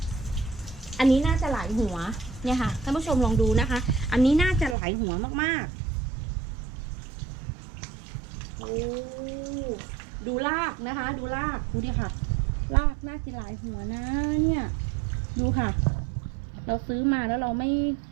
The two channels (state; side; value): drops out; left; at 4.8 s